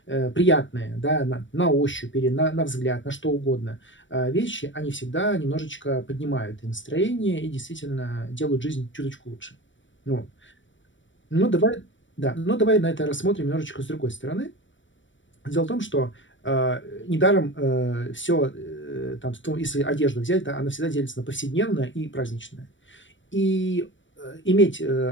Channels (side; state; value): right; late; 0.55 ms